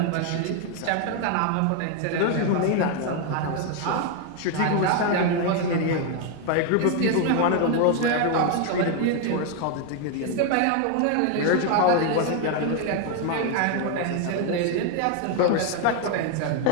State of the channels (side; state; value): both; different; correlation 0.01